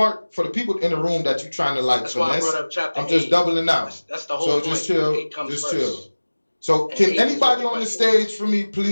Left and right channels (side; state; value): both; inverted; correlation -1.00